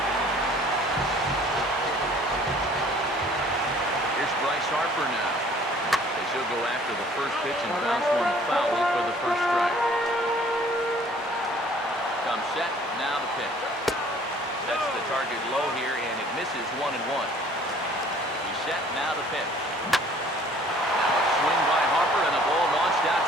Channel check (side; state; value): both; normal; correlation 0.55